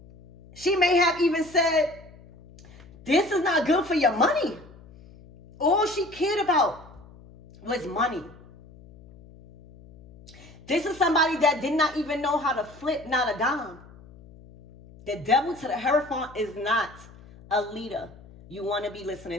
She may have even said, this is not good for your money. All she cared about was money. This is somebody that did not even know how to flip, not a dime. The devil to the Hierophant is not a leader you want to be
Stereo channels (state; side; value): noise; left; hum, 22 dB below the sound